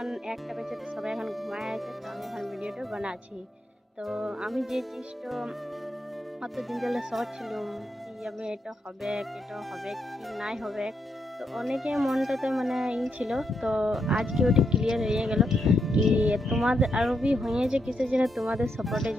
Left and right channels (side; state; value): both; normal; correlation 0.80